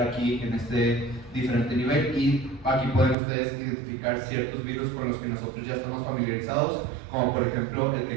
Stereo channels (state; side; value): drops out; left; at 3.2 s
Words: aquí en este diferente nivel, y aquí pueden ustedes identificar ciertos virus con los que nosotros ya estamos familiarizados, como por ejemplo el